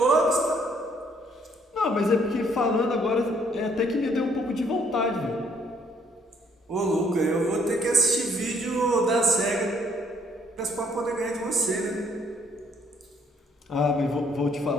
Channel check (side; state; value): both; normal; correlation 0.66